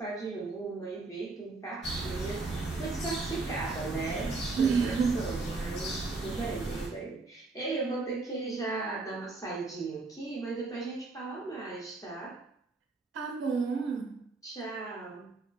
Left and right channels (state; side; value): quieter; left; 3.7 dB